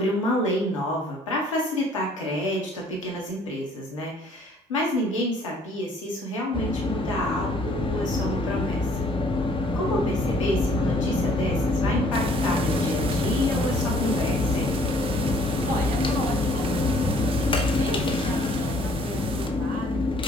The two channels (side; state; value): both; normal; correlation 0.59